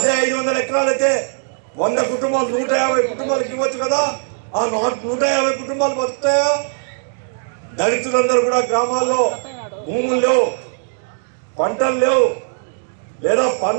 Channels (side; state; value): left; silent; digital silence